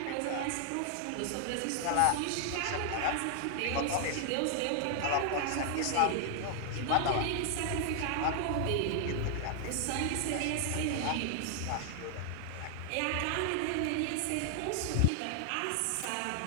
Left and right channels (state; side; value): different; both; correlation 0.00